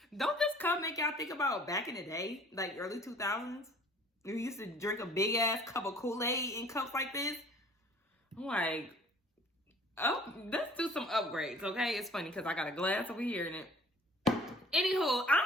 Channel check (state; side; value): normal; both; correlation 0.52